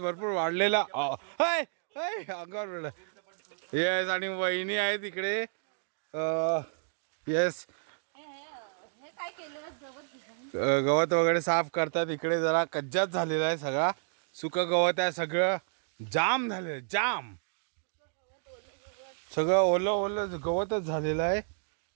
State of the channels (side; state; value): left; silent; digital silence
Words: वाढलेला अंगावर वेळ येस आणि वहिनी आहेत इकडे. येस गवत वगैरे साफ करतात. इकडे जरा कज्जात झालेला आहे, सगळा सुक गवत आहे, सगळं जाम झालेलं जाम, सगळं ओलं ओलं गवतच झालेलं आहे.